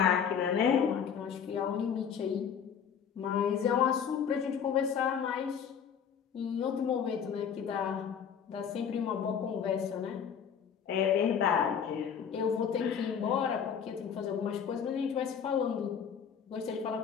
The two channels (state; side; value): quieter; right; 7.6 dB